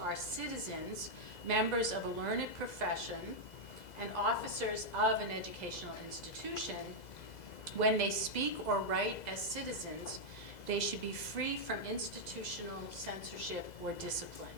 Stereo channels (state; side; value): late; right; 2.0 ms